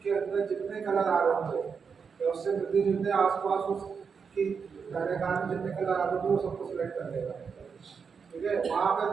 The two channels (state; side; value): quieter; left; 5.9 dB